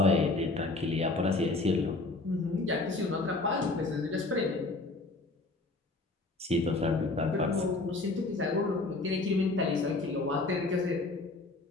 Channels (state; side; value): quieter; right; 3.2 dB